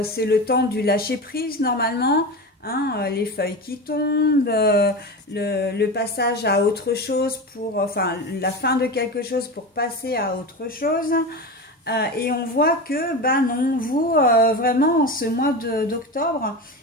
c'est le temps du lâcher prise normalement. Les feuilles qui tombent, le passage à autre chose enfin la fin de quelque chose pour passer à autre chose. Et on voit que, non, vous, vraiment, en ce mois d'octobre,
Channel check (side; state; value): both; normal; correlation 0.24